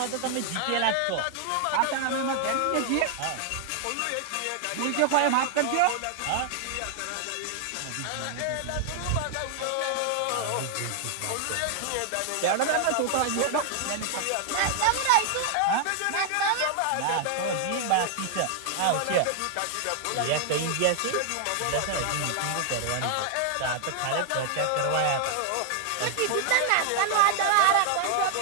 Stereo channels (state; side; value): different; both; correlation 0.00